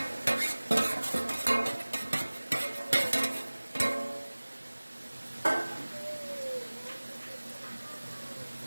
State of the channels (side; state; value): both; inverted; correlation -1.00